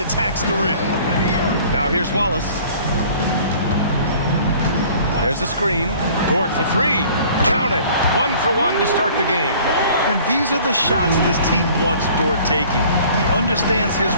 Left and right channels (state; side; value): inverted; both; correlation -0.51